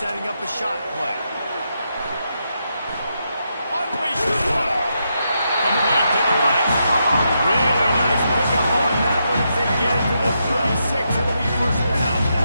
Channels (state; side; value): inverted; both; correlation -0.82